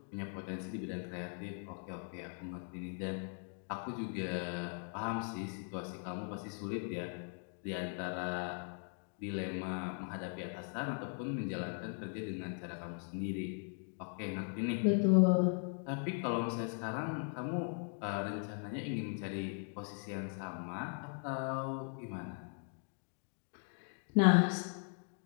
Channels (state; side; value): silent; right; 52 dB below the other